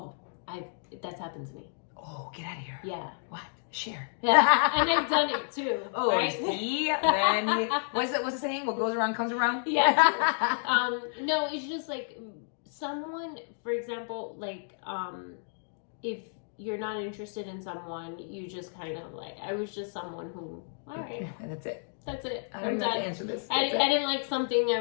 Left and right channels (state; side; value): silent; right; digital silence